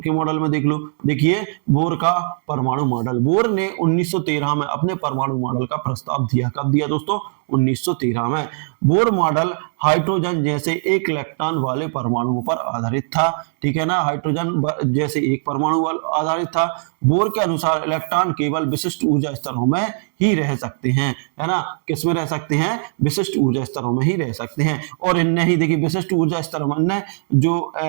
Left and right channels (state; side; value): silent; left; 63 dB below the other